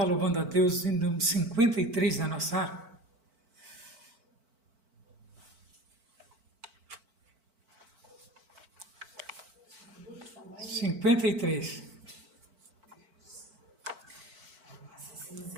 louvando a Deus em número 53 da nossa harpa. Cinquenta e três.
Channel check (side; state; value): left; late; 4.5 ms